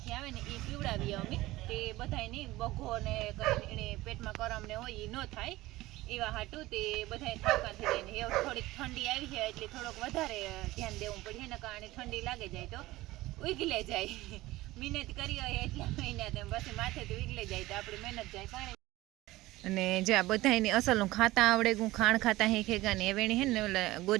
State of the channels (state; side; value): quieter; left; 18.2 dB